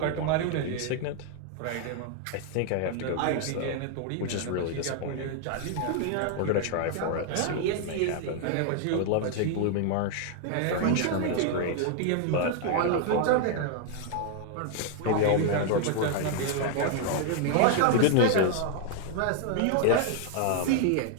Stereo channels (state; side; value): different; both; correlation 0.00